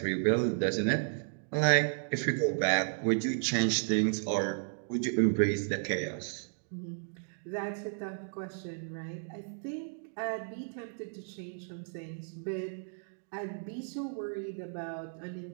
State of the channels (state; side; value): silent; left; digital silence